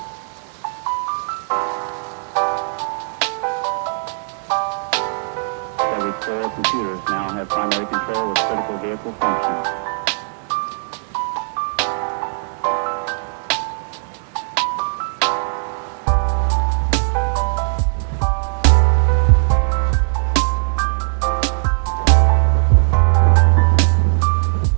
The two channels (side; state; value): left; silent; digital silence